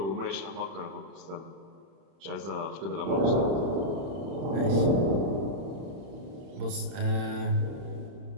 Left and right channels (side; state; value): left; late; 31 ms